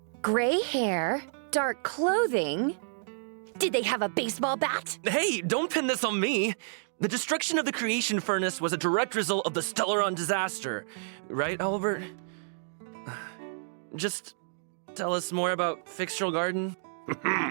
Gray hair, dark clothing? Did they have a baseball bat? Hey, don't pin this on me. The destruction of the creation furnace was a direct result of the Stellaron disaster. Right, Albert? Just tell us more about Fixtral Garden.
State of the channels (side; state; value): left; silent; digital silence